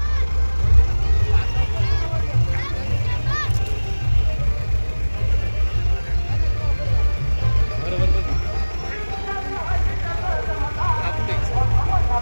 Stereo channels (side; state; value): both; inverted; correlation -1.00